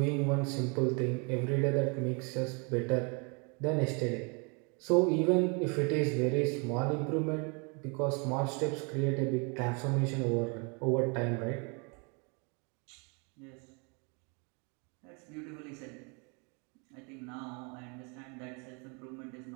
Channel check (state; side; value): quieter; left; 33.4 dB